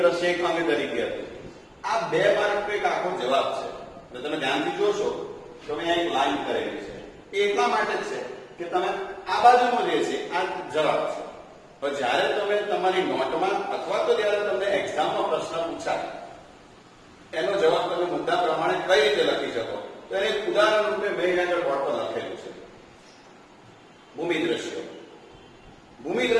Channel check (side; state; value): both; identical; correlation 1.00